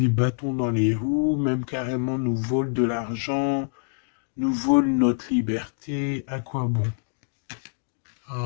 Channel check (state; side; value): silent; right; digital silence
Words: bâtons dans les roues, même carrément nous vole de l'argent, nous vole notre liberté. À quoi bon?